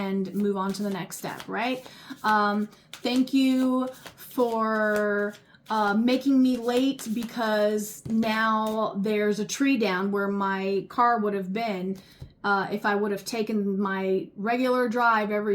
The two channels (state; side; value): identical; both; correlation 1.00